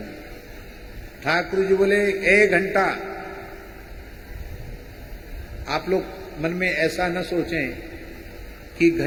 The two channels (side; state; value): both; identical; correlation 1.00